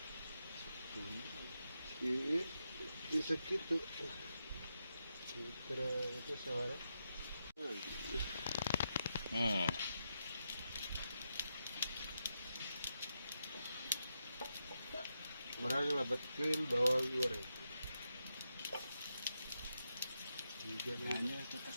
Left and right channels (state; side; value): inverted; both; correlation -0.85